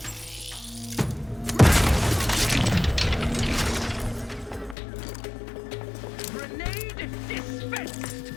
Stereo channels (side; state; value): right; drops out; at 4.8 s